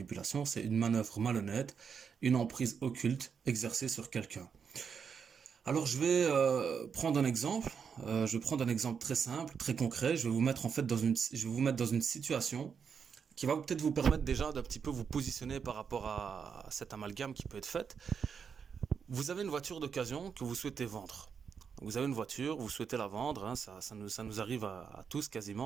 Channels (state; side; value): quieter; left; 6.6 dB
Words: c'est une manœuvre malhonnête, une emprise occulte exercée sur quelqu'un. Alors je vais prendre un exemple. Je vais prendre un exemple très simple, très concret. Je vais vous mettre en fait je vais vous mettre dans une situation qui va peut-être vous permettre déjà d'un petit peu vous positionner par rapport à cet amalgame qui peut être fait. Vous avez une voiture d'occasion que vous souhaitez vendre. Vous avez une voiture, vous souhaitez la vendre, hein, ça nous arrive à tous